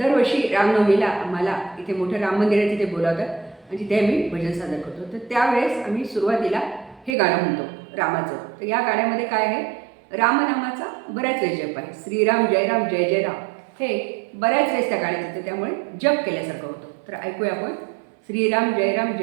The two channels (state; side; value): drops out; left; at 7.2 s